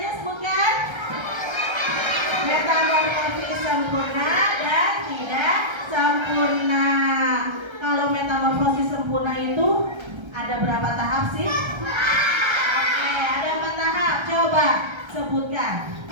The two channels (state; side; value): late; left; 1.3 ms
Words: sebutkan? Metamorfosis sempurna dan tidak sempurna. Kalau metamorfosis sempurna itu ada berapa tahap sih? Oke, ada 4 tahap. Coba sebutkan.